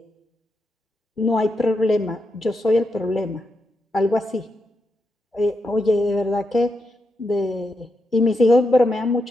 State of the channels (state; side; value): normal; both; correlation 0.84